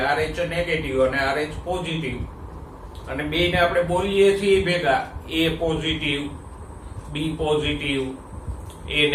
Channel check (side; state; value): both; identical; correlation 1.00